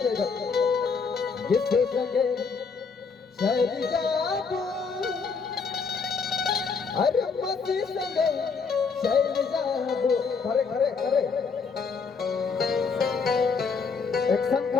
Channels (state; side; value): quieter; right; 5.2 dB